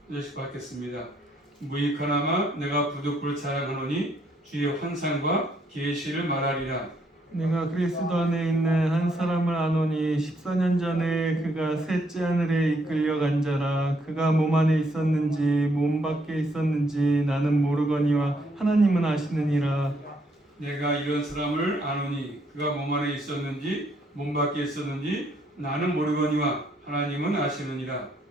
절씩 받겠습니다. 무익하나마 내가 부득불 자랑하노니 주의 환상과 계시를 말하리라. 내가 그리스도 안에 있는 한 사람을 아노니 14년 전에 그가 셋째 하늘에 이끌려간 자라. 그가 몸 안에 있었는지 몸 밖에 있었는지 나는 모르거니와 하나님은 아시느니라. 내가 이런 사람을 아노니 그가 몸 안에 있었는지 몸 밖에 있었는지 나는 모르거니와 하나님은 아시느니라.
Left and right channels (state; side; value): normal; both; correlation 0.71